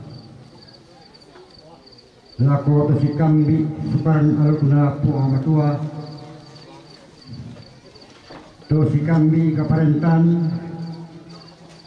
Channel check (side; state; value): both; identical; correlation 1.00